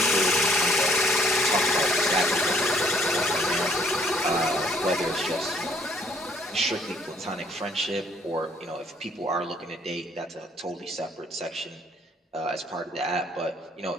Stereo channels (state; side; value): normal; both; correlation 0.63